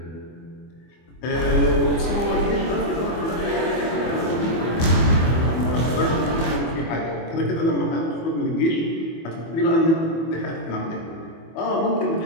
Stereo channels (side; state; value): right; late; 24 ms